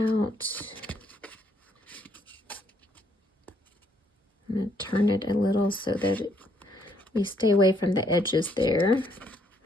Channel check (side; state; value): both; normal; correlation 0.70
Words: I'm going to turn it a little so that we stay away from the edges there.